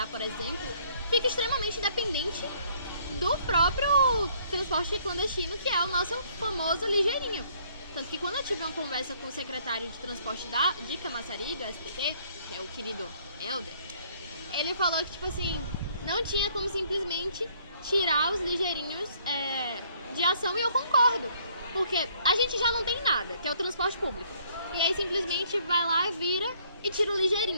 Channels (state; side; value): inverted; both; correlation -0.63